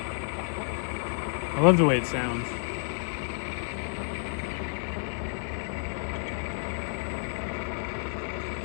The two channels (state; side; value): silent; right; digital silence